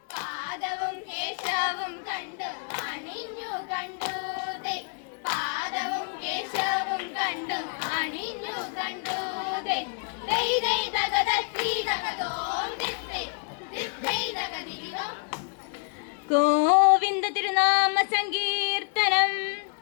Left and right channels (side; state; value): right; quieter; 38.8 dB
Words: പാദവും കേശവും കണ്ടു അണിഞ്ഞു കണ്ടു പാദവും കേശവും കണ്ടു അണിഞ്ഞു കണ്ടു ഗോവിന്ദ തിരുനാമ സങ്കീർത്തനം